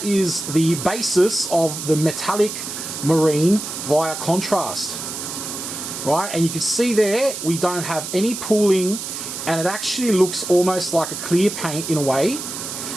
is the basis of the Metalic Marine via contrast. Right, and you can see there we don't have any pooling, and it actually looks almost like a clear paint in a way.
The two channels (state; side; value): noise; right; hiss, 7 dB below the sound